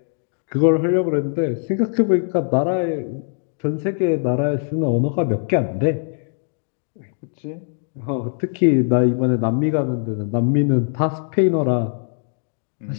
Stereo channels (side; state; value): right; silent; digital silence